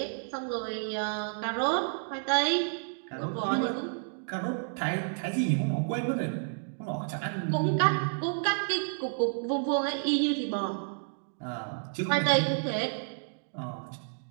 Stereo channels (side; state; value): left; silent; digital silence